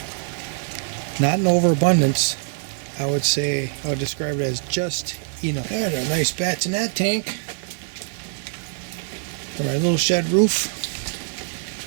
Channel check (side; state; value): left; silent; 63 dB below the other